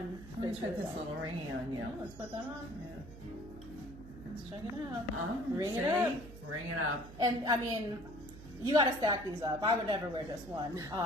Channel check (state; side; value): noise; right; hum, 15 dB below the sound